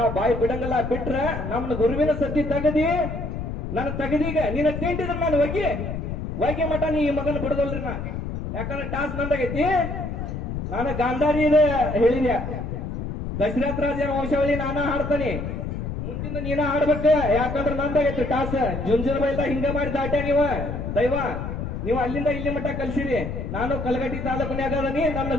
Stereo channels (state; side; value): noise; left; rumble, 5 dB below the sound